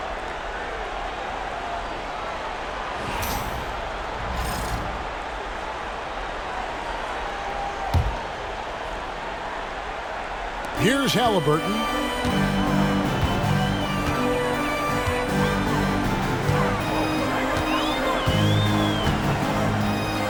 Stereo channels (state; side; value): identical; both; correlation 1.00